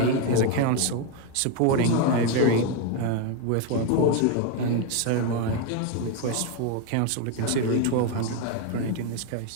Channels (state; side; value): different; both; correlation 0.01